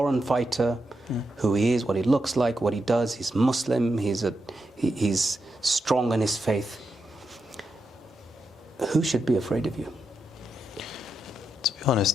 fighter, who he is, what he looks like, what he does. He's Muslim, he's strong in his faith. Who should be afraid of you? To be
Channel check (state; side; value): normal; both; correlation 0.85